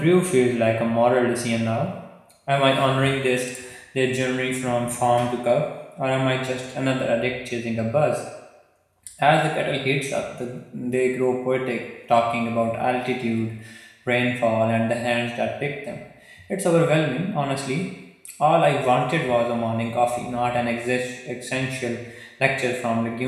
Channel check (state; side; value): identical; both; correlation 1.00